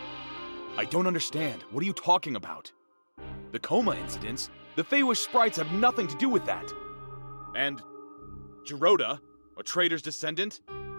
I don't understand. What are you talking about? The coma incidents? The Feywish sprites have nothing to do with that. And Giroda, a traitor's descendant?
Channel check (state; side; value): inverted; both; correlation -1.00